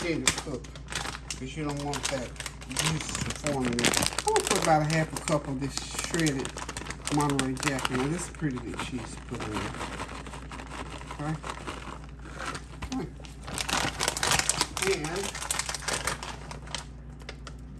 to cook, because you don't want that juice to form in there. I'm going to put about 1/2 cup of this shredded Monterey Jack in there. This is pretty good cheese to put in there. Okay. And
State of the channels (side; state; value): both; identical; correlation 1.00